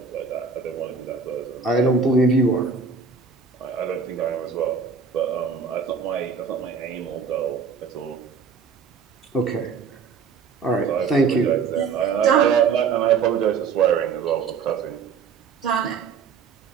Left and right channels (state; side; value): quieter; left; 5.5 dB